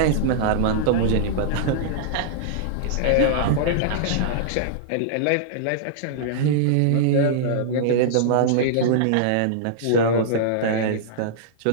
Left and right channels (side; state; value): both; different; correlation -0.02